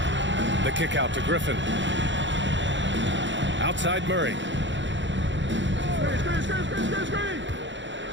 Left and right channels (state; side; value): late; left; 0.54 ms